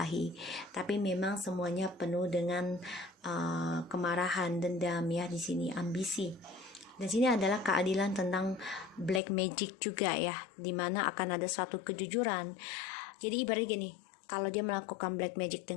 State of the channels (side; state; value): right; drops out; at 9.2 s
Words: Tapi memang semuanya penuh dengan kemarahan, dendam ya, di sini ambisi. Dan sini adalah keadilan tentang black magic juga ya, dimana akan ada suatu kejujuran. Jadi ibaratnya gini, kalau dia melakukan black magic